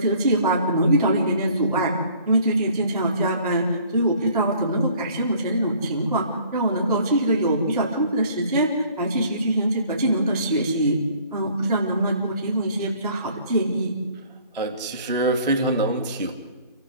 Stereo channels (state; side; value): inverted; both; correlation -0.55